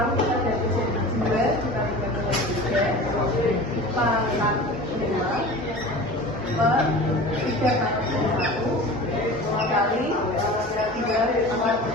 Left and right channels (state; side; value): normal; both; correlation 0.37